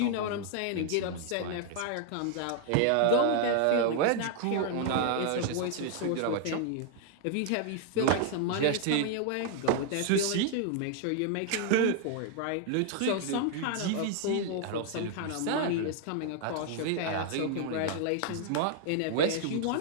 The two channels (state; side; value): different; both; correlation 0.00